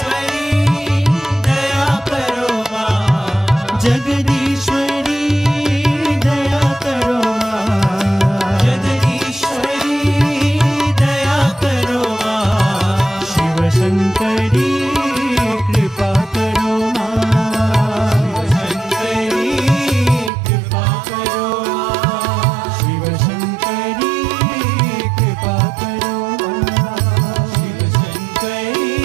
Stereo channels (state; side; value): drops out; left; at 20.3 s